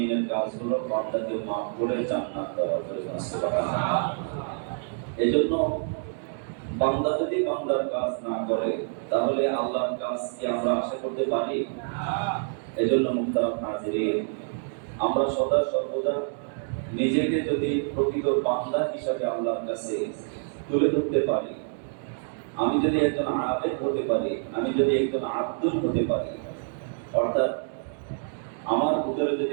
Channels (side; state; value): left; silent; 60 dB below the other